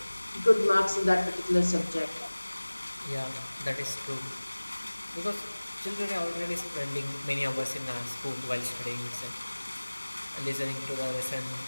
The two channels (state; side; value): inverted; both; correlation -1.00